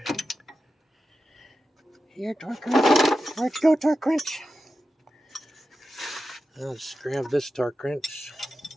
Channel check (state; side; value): normal; both; correlation 0.91